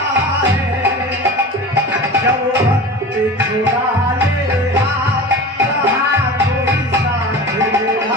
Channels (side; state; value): both; normal; correlation 0.33